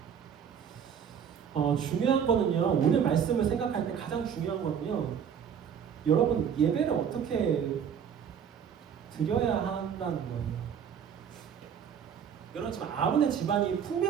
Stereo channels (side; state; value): left; quieter; 7.9 dB